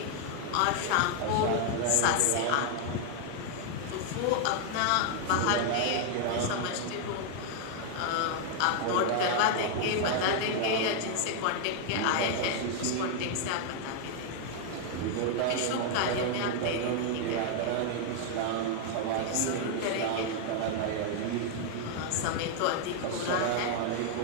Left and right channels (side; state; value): both; different; correlation 0.00